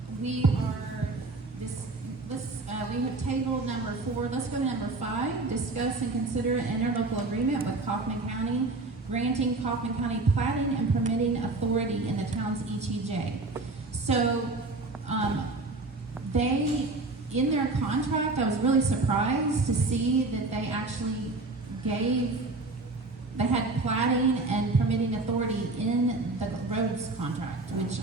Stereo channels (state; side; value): quieter; left; 3.3 dB